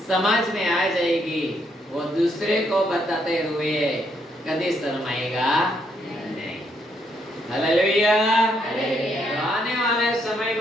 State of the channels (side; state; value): both; normal; correlation 0.74